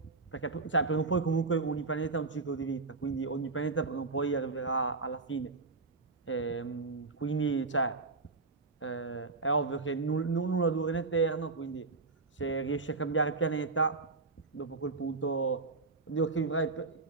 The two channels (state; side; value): quieter; left; 3.8 dB